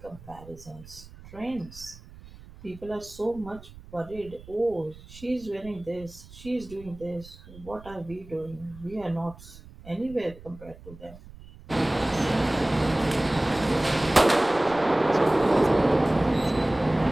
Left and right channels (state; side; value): noise; right; rumble, 19 dB below the sound